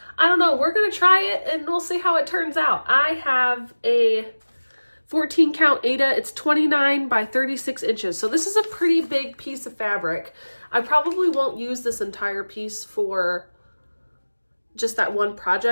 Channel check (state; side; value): inverted; both; correlation -1.00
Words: I don't know, we're gonna try it and we'll see how it turns out. I have a 14 count Aida. It's 29 by 36 inches. So this is a pretty big piece of fabric. I probably won't use this entire piece for just that one